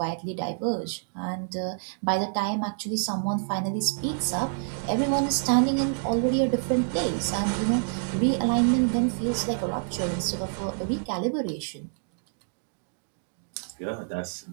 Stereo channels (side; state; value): left; silent; digital silence